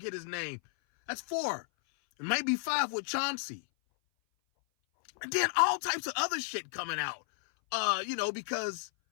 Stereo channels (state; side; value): silent; right; 56 dB below the other